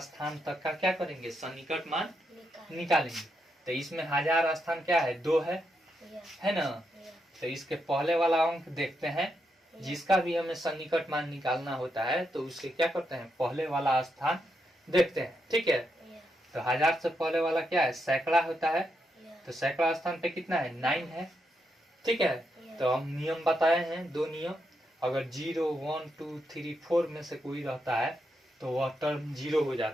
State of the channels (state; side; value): normal; both; correlation 0.82